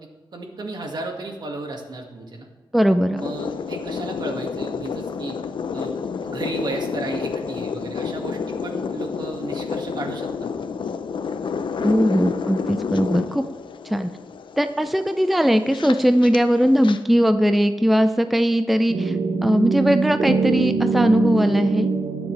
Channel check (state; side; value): normal; both; correlation 0.91